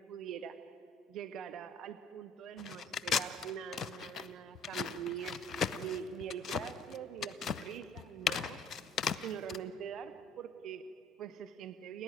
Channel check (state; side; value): normal; both; correlation 0.53